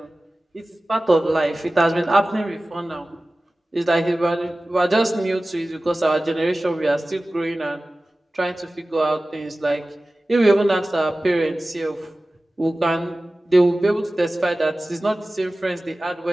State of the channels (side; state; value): both; normal; correlation 0.97